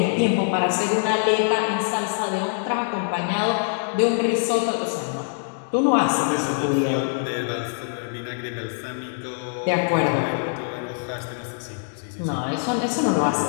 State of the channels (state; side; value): silent; right; digital silence